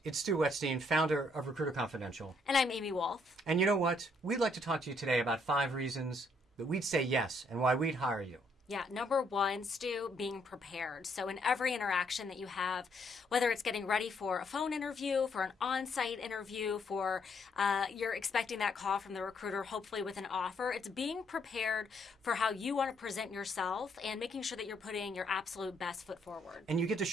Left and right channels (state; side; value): normal; both; correlation 0.70